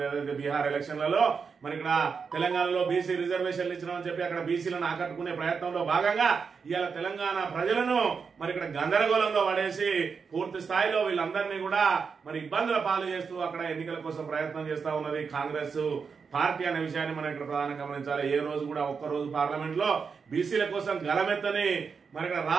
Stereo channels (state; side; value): quieter; left; 5.6 dB